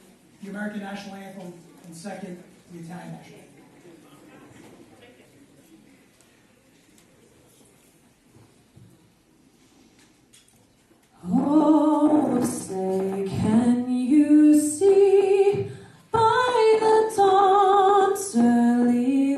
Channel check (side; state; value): both; identical; correlation 1.00